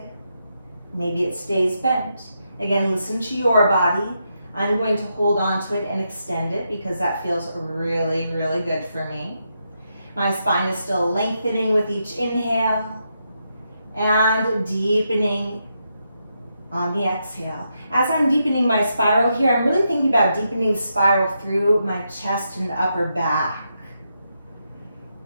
maybe it stays bent. Again, listen to your body. I'm going to hold on to it and extend it because that feels really, really good for me. My spine is still lengthening with each inhale and deepening on the exhale. As I'm deepening my spiral here, I'm really thinking about deepening the spiral through my chest and upper back.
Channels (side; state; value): both; inverted; correlation -0.82